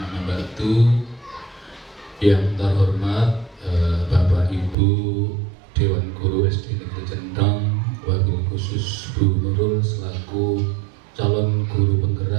ba'du. Yang terhormat Bapak Ibu Dewan Guru SD Negeri Cendong, wabil khusus Bu Nurul selaku calon guru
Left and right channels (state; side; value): drops out; left; at 4.8 s